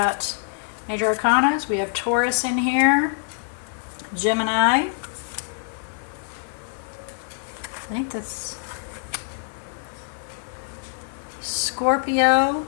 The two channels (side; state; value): right; silent; digital silence